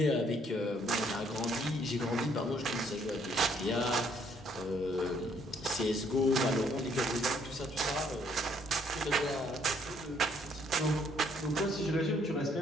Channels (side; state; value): both; normal; correlation 0.66